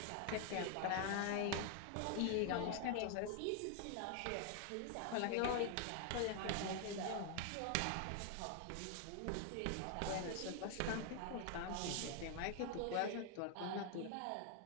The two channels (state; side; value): different; both; correlation 0.00